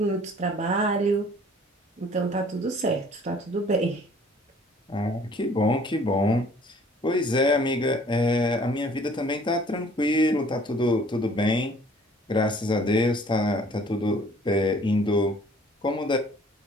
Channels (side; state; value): both; normal; correlation 0.55